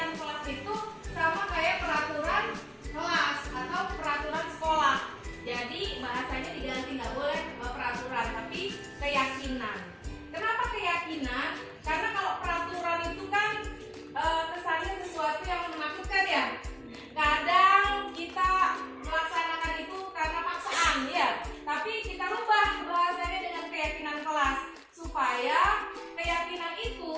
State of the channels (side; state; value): both; identical; correlation 1.00